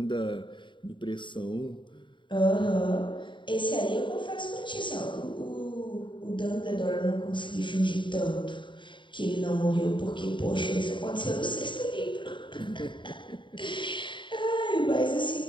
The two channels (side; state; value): right; late; 0.23 ms